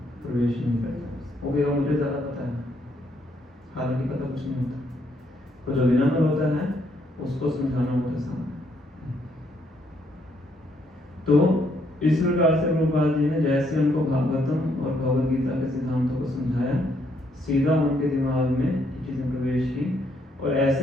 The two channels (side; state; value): both; normal; correlation 0.72